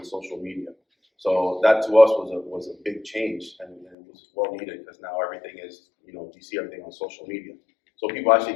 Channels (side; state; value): right; drops out; at 4.0 s